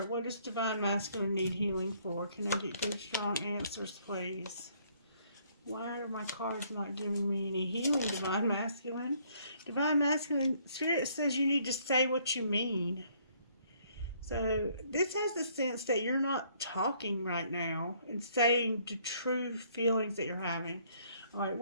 What does Divine Masculine need healing for? Can I get good, strong answers, please? Why are my cards not giving me any healing, Divine Masculine? Divine Masculine Spirit says you need to say what you mean. So this has the sense that you're not talking right now and saying the true feelings that you're having. All right,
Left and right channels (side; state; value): both; inverted; correlation -0.65